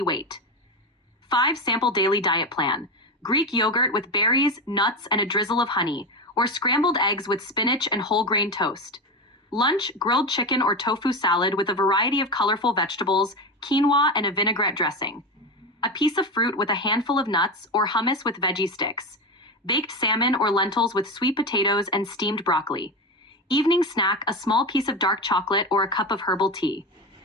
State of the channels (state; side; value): normal; both; correlation 0.19